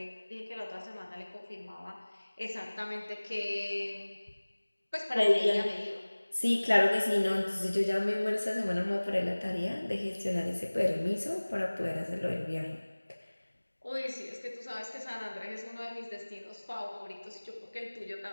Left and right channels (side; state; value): both; inverted; correlation -1.00